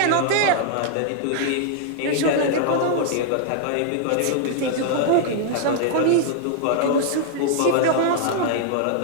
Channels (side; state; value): both; different; correlation -0.01